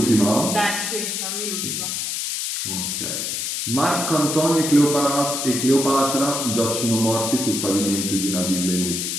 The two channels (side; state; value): left; noise; hiss, 2 dB below the sound